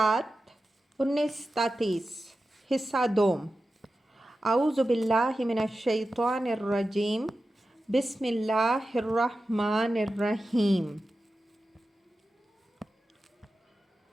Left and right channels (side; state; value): both; normal; correlation 0.93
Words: 19-33 حصہ دوم اعوذ باللہ من الشیطان الرجیم بسم اللہ الرحمن الرحیم